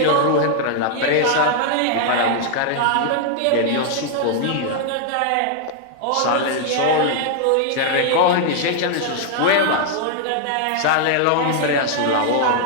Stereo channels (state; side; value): different; both; correlation 0.00